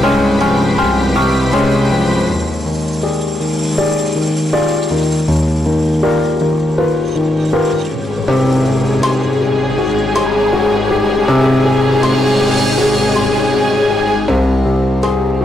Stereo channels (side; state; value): both; normal; correlation 0.82